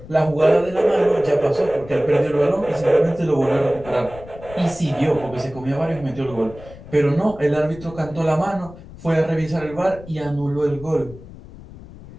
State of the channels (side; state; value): left; noise; rumble, 17 dB below the sound